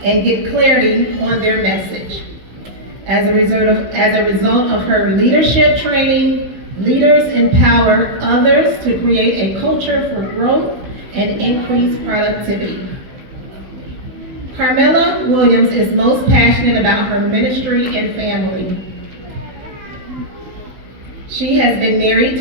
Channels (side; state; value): left; late; 16 ms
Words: and get clarity on their message. As a result of her leadership training, leaders empower others to create a culture for growth and increased productivity. Carmela Williams is most passionate about her ministry and family. She has been married